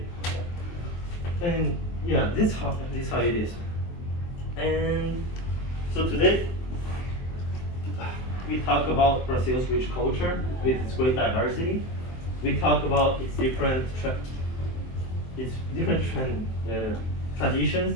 And yeah, this how it is. And so today we talk about Brazil's rich culture with its great diversity. We talk about its different traditions,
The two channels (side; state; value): right; late; 23 ms